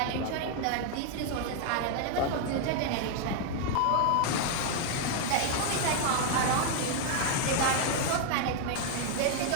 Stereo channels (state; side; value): different; both; correlation 0.00